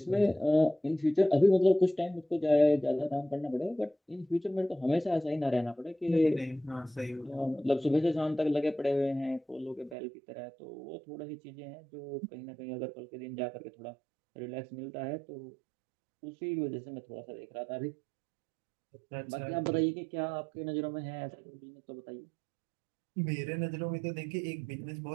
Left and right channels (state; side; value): drops out; left; at 10.0 s